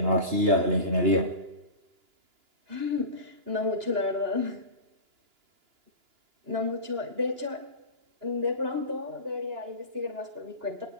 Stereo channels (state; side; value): late; left; 2.9 ms